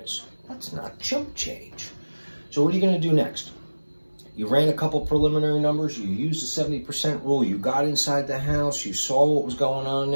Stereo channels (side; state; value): both; inverted; correlation -1.00